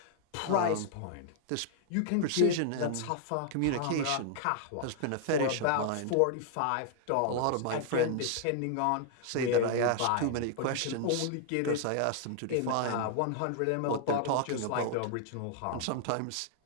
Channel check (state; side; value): different; both; correlation -0.01